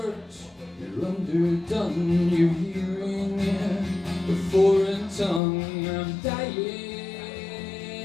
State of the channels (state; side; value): drops out; right; at 5.4 s